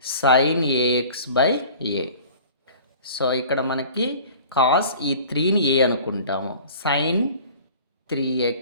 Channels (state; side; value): inverted; both; correlation -0.45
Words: sine a x by a. So ఇక్కడ మనకి cos ఈ 3ని ఏ అనుకుంటాము, sign